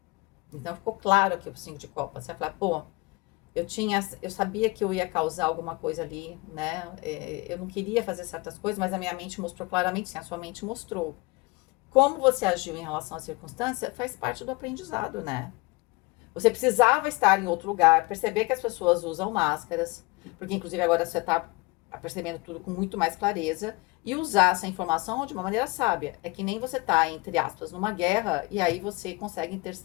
Então, ficou claro aqui o 5 de copas. Você vai falar, pô, eu sabia que eu ia causar alguma coisa ali, né? Eu não queria fazer certas coisas, mas a minha mente mostrou claramente, sim, a sua mente mostrou. Como você agiu em relação à circunstância faz parte do aprendizado, né? Você precisava estar em outro lugar, perceber que as pessoas usam máscaras, porque inclusive agora você está percebendo tudo com muito mais clareza, e usar essa informação de uma maneira sábia. É que nem você tá, entre aspas, numa guerra, e aí você consegue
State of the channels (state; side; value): quieter; right; 24.8 dB